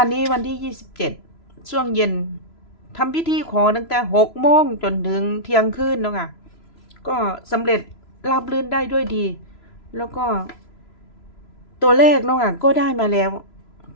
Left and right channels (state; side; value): late; right; 3.0 ms